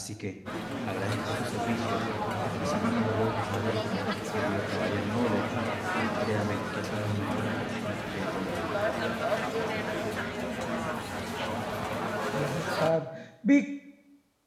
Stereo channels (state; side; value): identical; both; correlation 1.00